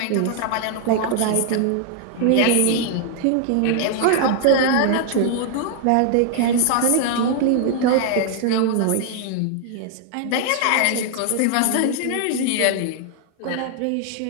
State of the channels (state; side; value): different; both; correlation 0.00